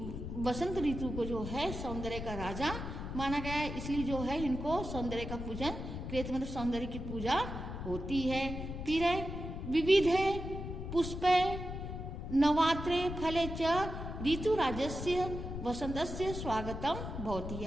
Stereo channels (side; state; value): left; noise; rumble, 6 dB below the sound